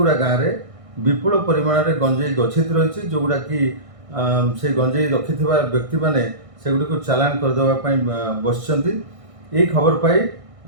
गाँव में विपुल परिमाण में गंजेई गच्छित रही जोगुड़ा कि से गंजेई रखि व्यक्ति मैंने सेगुड़ी चालान करदेवाई बस खबर पाई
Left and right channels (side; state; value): left; late; 1.6 ms